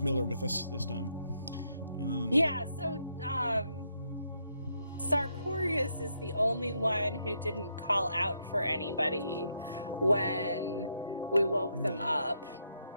with us this time. Yeah, so... Sartorius is the only one who didn't call out for anybody when we woke them up.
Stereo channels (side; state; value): both; inverted; correlation -0.78